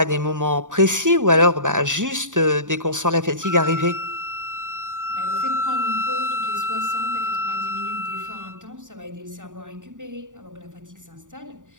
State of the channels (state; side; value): late; left; 0.87 ms